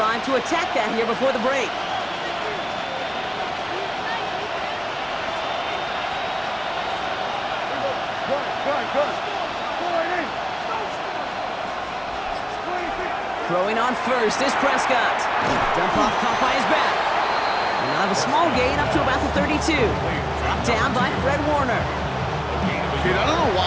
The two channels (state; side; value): identical; both; correlation 1.00